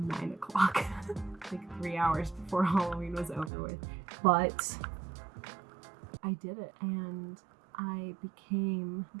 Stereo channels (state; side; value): drops out; left; at 3.5 s